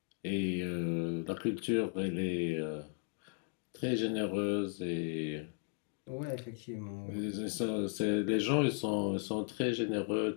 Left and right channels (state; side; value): silent; right; 54 dB below the other